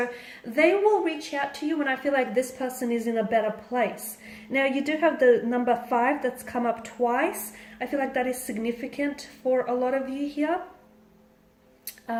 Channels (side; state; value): both; identical; correlation 1.00